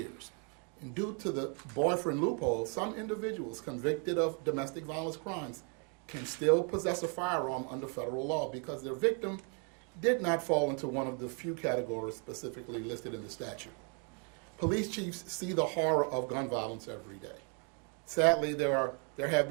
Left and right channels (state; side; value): quieter; left; 38.1 dB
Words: And due to the boyfriend loophole, some individuals convicted of domestic violence crimes can still possess a firearm under federal law because their victim did not fall into one of the few categories specifically listed in the statute. Police chiefs see the horror of gun violence every day. Sadly, there have